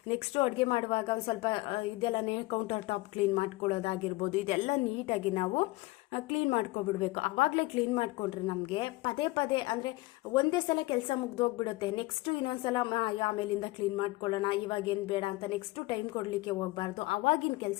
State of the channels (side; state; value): right; quieter; 21.0 dB